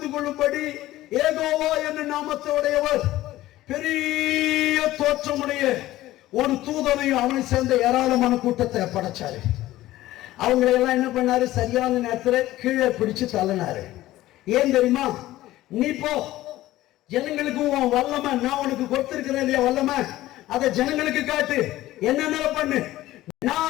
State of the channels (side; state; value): right; quieter; 15.8 dB